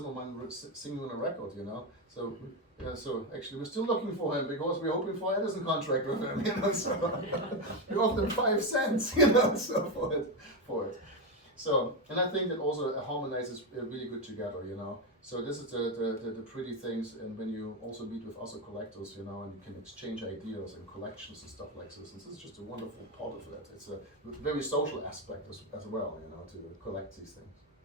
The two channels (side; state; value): both; normal; correlation 0.10